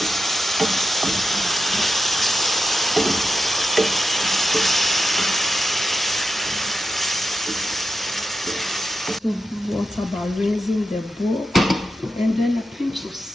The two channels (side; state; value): both; normal; correlation 0.88